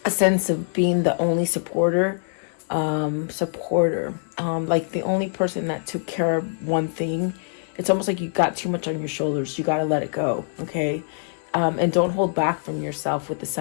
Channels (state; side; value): silent; right; 56 dB below the other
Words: a sense of being the only supporter, like the only person that took care of one thing, it's almost like you got too much on your shoulders. You got to let it go, okay? And don't hold back from yourself with the